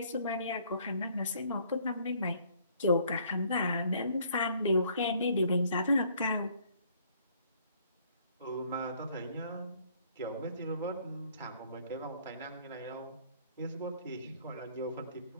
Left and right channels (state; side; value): inverted; both; correlation -0.62